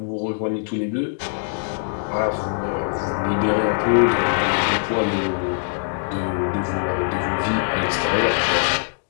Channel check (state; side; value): silent; right; digital silence